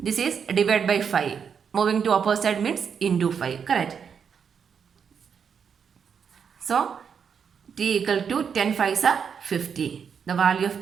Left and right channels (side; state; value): left; quieter; 6.9 dB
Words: is divided by 5. Moving to opposite means into 5. Correct. So, T equal to 10 5s are 50. The value